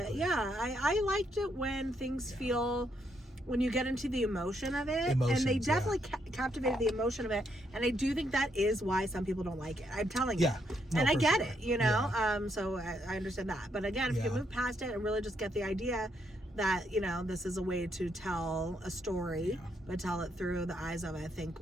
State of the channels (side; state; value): both; normal; correlation 0.76